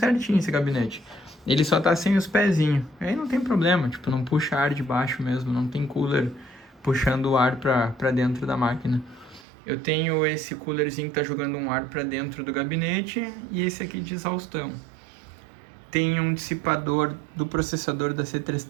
esse gabinete. Ele só tá sem os pezinhos. Aí não tem problema, tipo, não puxa ar de baixo mesmo. Não tem cooler puxando o ar pra dentro da máquina. Eu tenho esse coolerzinho que tá jogando um ar pra dentro do gabinete e esse aqui de exaustão. Tem um dissipador do processador da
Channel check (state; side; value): drops out; left; at 9.5 s